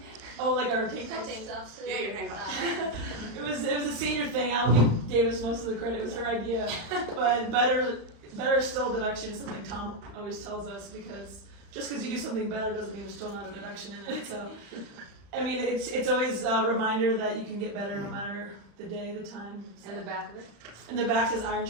Oh, like our tank tops today? Yeah, your tank tops. It was a senior thing. I'll give Davis most of the credit. It was her idea. But better still deduction is something Tom always tells us, because just because you do something better doesn't mean there's still not a deduction in it. So, I mean, it's always a reminder that you can get better no matter the day, the time. So. And the back of it? And the back says iron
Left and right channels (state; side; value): late; left; 35 ms